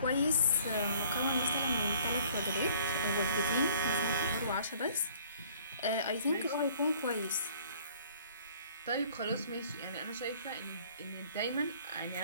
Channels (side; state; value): both; inverted; correlation -0.56